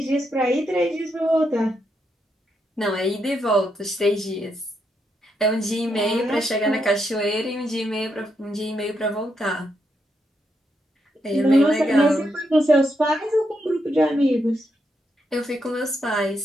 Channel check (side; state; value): both; normal; correlation 0.81